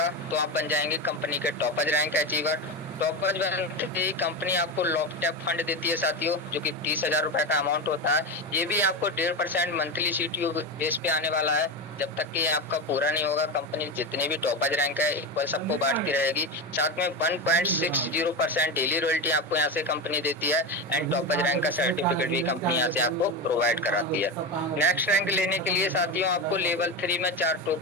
तो आप बन जाएंगे कंपनी के टॉपज रैंक अचीवर। टॉपज बनते ही कंपनी आपको लॉकटैप फंड देती है साथियों जो कि 30,000 रुपए का अमाउंट होता है। ये भी आपको 1.5% मंथली सीटीओ बेस पे आने वाला है। जब तक कि आपका पूरा नहीं होगा कंपनी जितने भी टॉपर्स रैंक है इक्वल सबको बांटती रहेगी। साथ में 1.60% डेली रॉयल्टी आपको यहाँ से कंपनी देती है एंड टॉपर्स रैंक का सर्टिफिकेट भी कंपनी यहाँ से आपको प्रोवाइड कराती है। नेक्स्ट रैंक लेने के लिए साथियों आपको लेवल 3 में 4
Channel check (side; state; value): both; normal; correlation 0.17